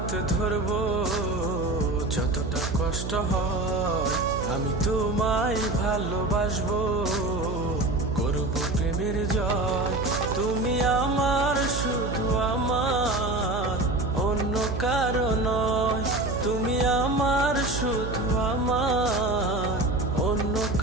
ধরবো যতটা কষ্ট হয়, আমি তোমায় ভালোবাসবো, করব প্রেমের জয়। তুমি আমার, শুধু আমার, অন্য কারো নয়। তুমি আমার, শুধু আমার, অন্য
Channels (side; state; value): right; noise; hum, 5 dB below the sound